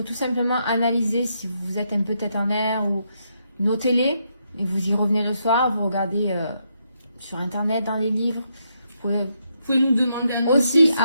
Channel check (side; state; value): both; inverted; correlation -0.79